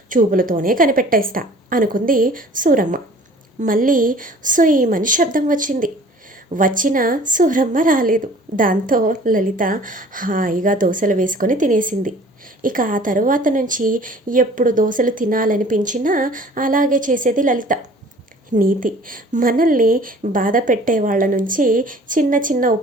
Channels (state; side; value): normal; both; correlation 0.49